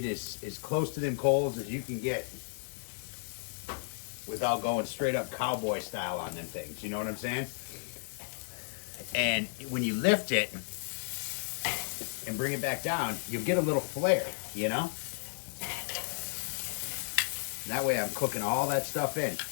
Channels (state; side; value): silent; right; 56 dB below the other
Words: as close to them coals as you can get without going straight up cowboy style on them things. You know what I'm saying? And when you lift it and bring it back down, you'll get a little flare, you know? And that way I'm cooking all that stuff in.